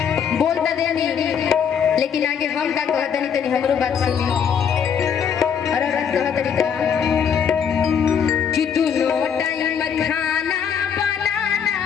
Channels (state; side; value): quieter; right; 7.5 dB